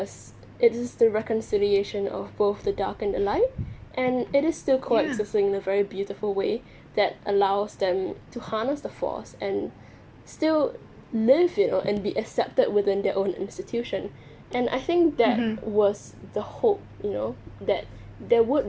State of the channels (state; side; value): identical; both; correlation 1.00